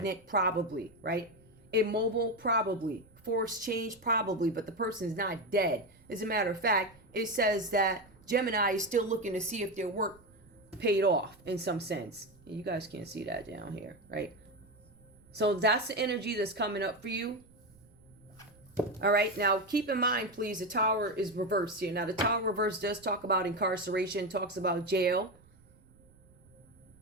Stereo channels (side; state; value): right; noise; rumble, 28 dB below the sound